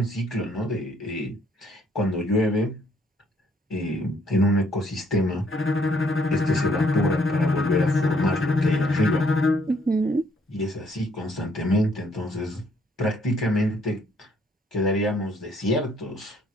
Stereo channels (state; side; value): normal; both; correlation 0.66